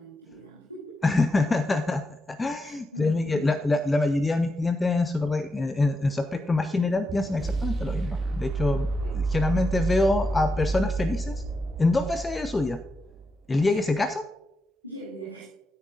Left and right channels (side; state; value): both; normal; correlation 0.87